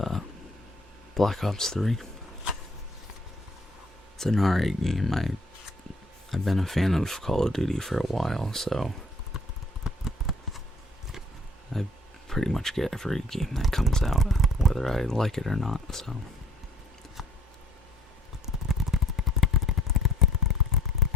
Black Ops 3. It's an alright game. I've been a fan of Call of Duty for a while, so I pretty much get every game that comes out, whether I like it or not, so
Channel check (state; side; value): normal; both; correlation 0.57